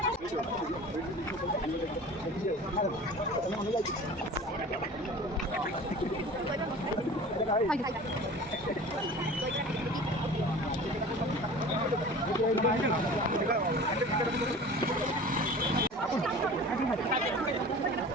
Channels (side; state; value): both; normal; correlation 0.40